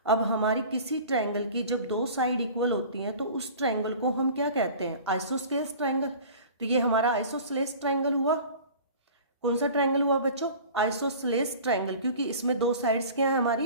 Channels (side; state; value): both; inverted; correlation -0.42